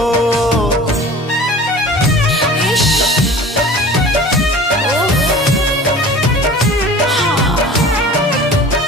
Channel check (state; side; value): normal; both; correlation 0.42